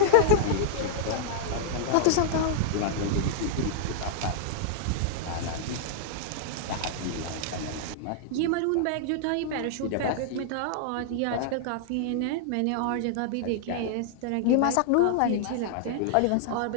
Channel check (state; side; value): different; both; correlation -0.01